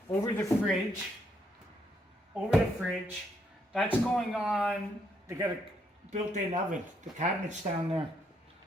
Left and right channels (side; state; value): both; normal; correlation 0.74